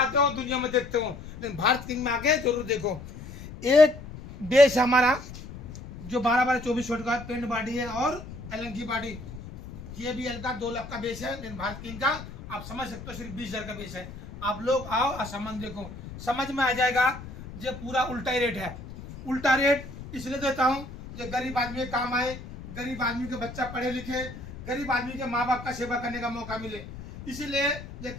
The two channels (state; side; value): noise; left; rumble, 13 dB below the sound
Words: हो, दुनिया में देखते हो, लेकिन भारत किंग में आके जरूर देखो। एक बेस हमारा जो 12-12-24 वाट का पेंट बॉडी है, और एलन की बॉडी, ये भी एल का 2 लाख का बेस है। लेकिन भारत किंग का आप समझ सकते हो सिर्फ 20,000 का बेस है। आप लोग आओ और सामान देखो, समझ में आ जाएगा। ये पूरा उल्टा ही रेट है। उल्टा रेट इसलिए देता हूँ जो गरीब आदमी के काम आए, गरीब आदमी के बच्चा पढ़े लिखे, गरीब आदमी के माँ बाप का सेवा करने का मौका मिले। इसीलिए ये